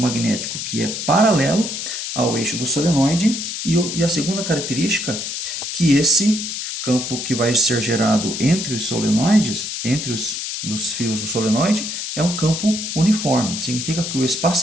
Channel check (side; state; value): left; noise; hiss, 5 dB below the sound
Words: que é paralelo ao eixo do solenoide. E a segunda característica, que esse campo que vai ser gerado entre os solenoides, entre os fios do solenoide, é um campo uniforme. Significa que o